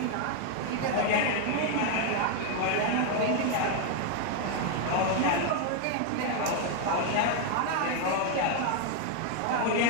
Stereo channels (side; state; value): both; different; correlation 0.00